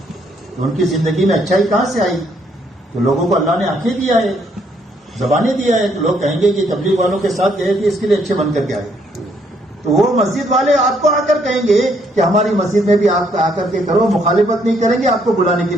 تو ان کی زندگی میں اچھائی کہاں سے آئی؟ تو لوگوں کو اللہ نے آنکھیں دیا ہے، زبانیں دیا ہے، تو لوگ کہیں گے کہ تبلیغ والوں کے ساتھ گئے تھے اس کے لیے اچھے بن کر کے آئے. تو وہ مسجد والے آپ کو آ کر کہیں گے کہ ہماری مسجد میں بھی آپ آ کر کے کرو، مخالفت نہیں کریں گے، آپ کو بلانے کے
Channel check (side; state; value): both; normal; correlation 0.70